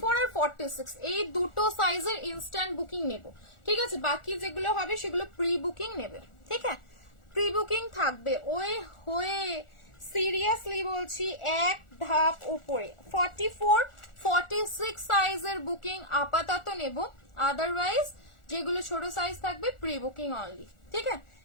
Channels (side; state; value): right; late; 1.4 ms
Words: আর 46 এই দুটো সাইজের ইনস্ট্যান্ট বুকিং নেব, ঠিক আছে? বাকি যেগুলো হবে সেগুলো প্রি বুকিং নেবে, ঠিক আছে? প্রি বুকিং থাকবে। ওই হয়ে সিরিয়াসলি বলছি এক ধাপ উপরে 44 46 সাইজের বুকিং আপাতত নেব, আদারওয়াইজ যেগুলো ছোট সাইজ থাকবে প্রি বুকিং অনলি, ঠিক আছে?